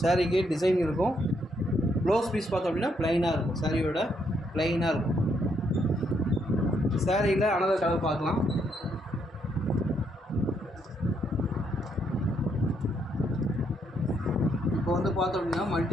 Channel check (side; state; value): both; normal; correlation 0.74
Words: சாரிக்கு டிசைன் இருக்கும். ப்ளவுஸ் பீஸ் பார்த்தோம் அப்படின்னா ப்ளைனாக இருக்கும். சாரியோட ப்ளைனாக இருக்கும். சாரியில் அனதர் கலர் பார்க்கலாம். இப்போ வந்து பார்த்தோம் அப்படின்னா